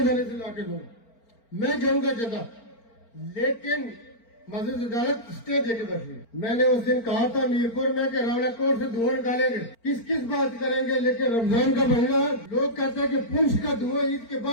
سے لا کے دوں گا. میں جاؤں گا جگہ, لیکن مسجد عدالت اسٹے دے کے بیٹھی. میں نے اس دن کہا تھا میرپور میں کہ راولا کوٹ سے دھواں نکالیں گے, کس بات کریں گے, لیکن رمضان کا مہینہ لوگ کہتے ہیں کہ پنچ کا دھواں عید کے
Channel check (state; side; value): late; right; 4.4 ms